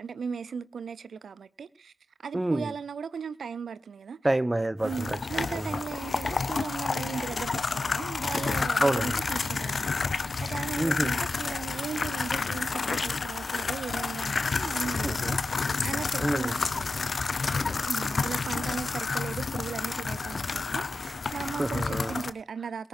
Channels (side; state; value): both; normal; correlation 0.91